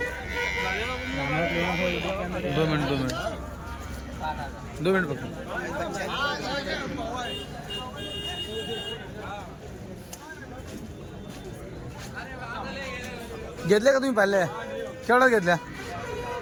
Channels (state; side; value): identical; both; correlation 1.00